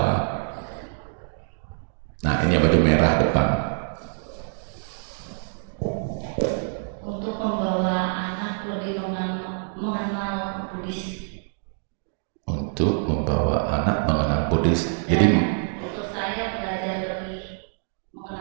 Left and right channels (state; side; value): silent; left; 61 dB below the other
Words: Nah, ini yang baju merah depan. Untuk membawa anak lebih mengenal Buddhis. Untuk membawa anak mengenal Buddhis. Jadi Untuk saya belajar lebih